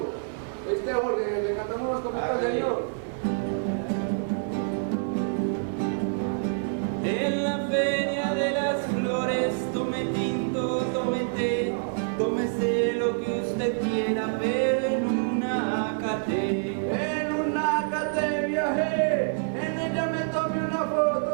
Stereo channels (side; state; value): left; silent; 60 dB below the other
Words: Jorge, le cantamos unos copitos, señor. En la feria de las flores, tome tinto, tome té, tómese lo que usted quiera, pero en una academia. En una academia, en ella me tomé una